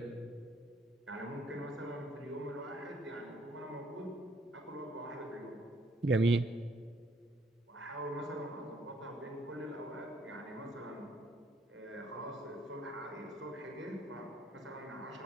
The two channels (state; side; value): normal; both; correlation 0.65